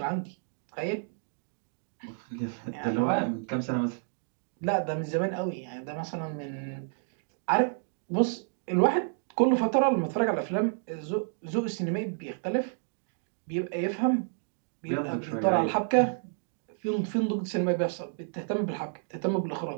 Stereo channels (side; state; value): left; silent; digital silence